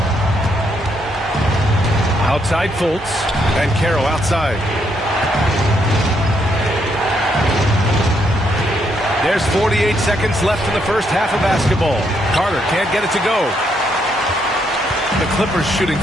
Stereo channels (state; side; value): normal; both; correlation 0.75